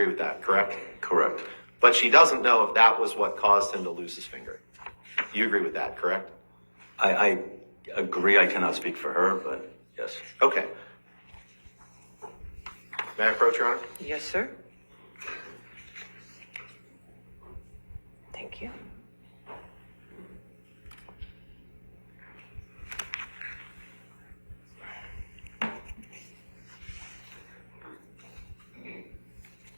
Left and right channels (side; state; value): both; inverted; correlation -1.00